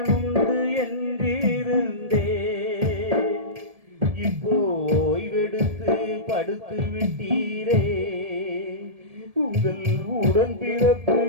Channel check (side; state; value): left; late; 1.7 ms